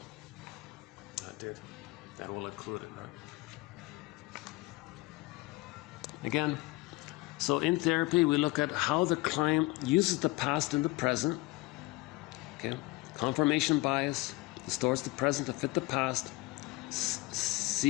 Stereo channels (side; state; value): right; quieter; 21.4 dB